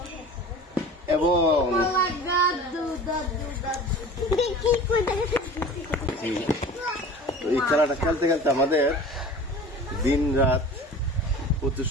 এবং এই খেলাটা খেলতে খেলতে আমাদের দিন রাত প্রচুর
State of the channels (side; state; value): both; normal; correlation 0.39